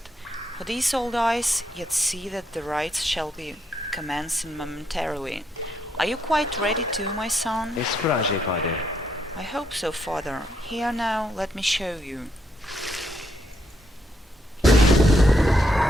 For these old eyes, yet see that the rites shall be commencing momentarily. Are you quite ready too, my son? Esprage, Father. I hope so, father. Here now, let me show you.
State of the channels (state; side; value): normal; both; correlation 0.76